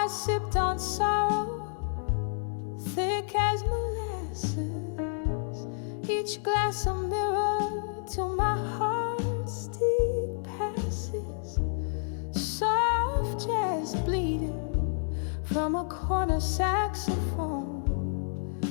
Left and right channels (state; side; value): silent; right; digital silence